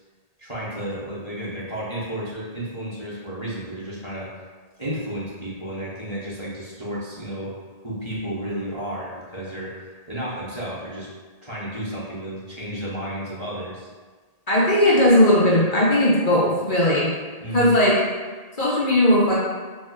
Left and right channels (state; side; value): late; right; 1.8 ms